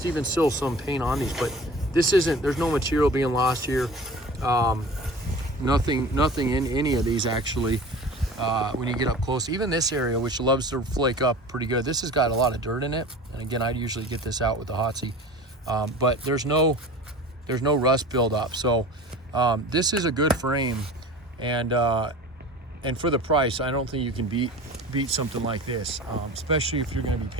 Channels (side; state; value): both; normal; correlation 0.38